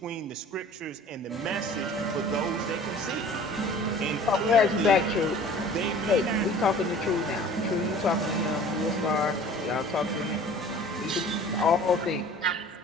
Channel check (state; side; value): normal; both; correlation 0.47